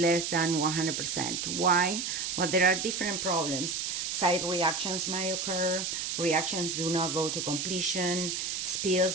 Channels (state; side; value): noise; right; hiss, 2 dB below the sound